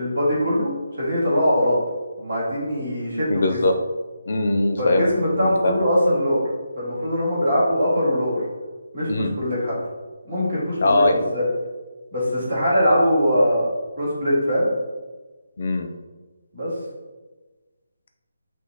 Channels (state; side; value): inverted; both; correlation -0.84